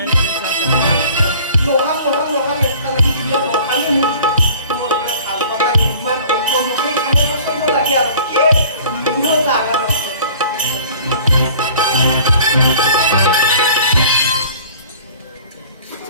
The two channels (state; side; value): inverted; both; correlation -0.48